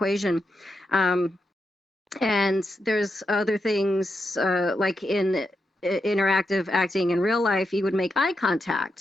And there's other things like in interactive acting in real life, you would make eye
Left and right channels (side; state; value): both; normal; correlation 0.85